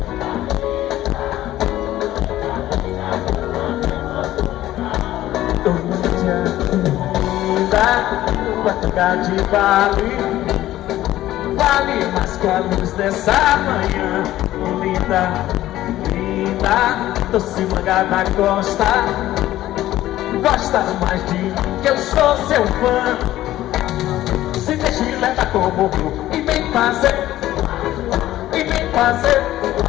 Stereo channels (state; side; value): quieter; right; 14.5 dB